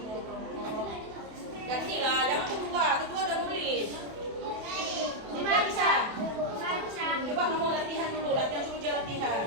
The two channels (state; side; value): late; left; 28 ms